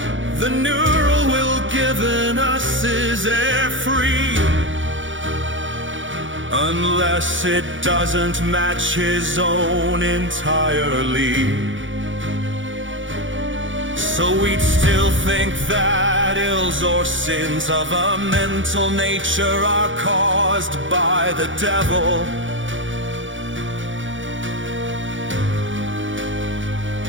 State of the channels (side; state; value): left; late; 0.56 ms